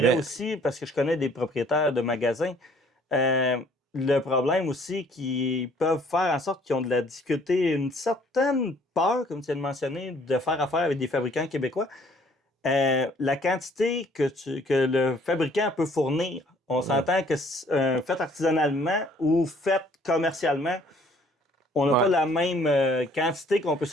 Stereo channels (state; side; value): normal; both; correlation 0.59